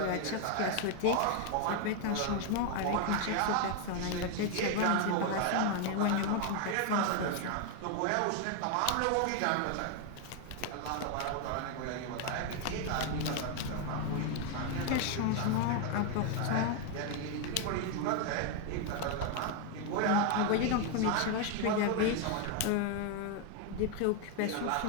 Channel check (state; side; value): different; both; correlation 0.01